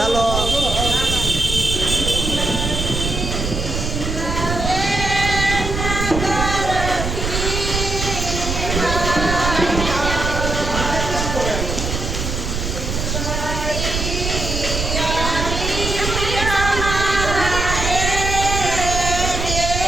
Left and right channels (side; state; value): right; noise; rumble, 3 dB below the sound